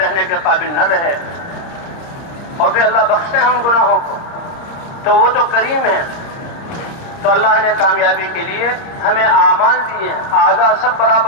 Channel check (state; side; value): late; right; 30 ms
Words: کے قابل نہ رہے. اور پھر اللہ بخشتے ہیں ان گناہوں کو، تو وہ تو کریم ہے. تو اللہ نے کامیابی کے لیے ہمیں اعمال دیے ہیں، اعداء سب